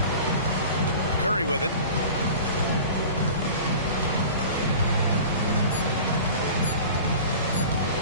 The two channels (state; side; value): inverted; both; correlation -0.40